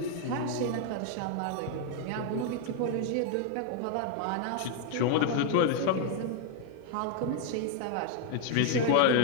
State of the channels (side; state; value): both; different; correlation 0.00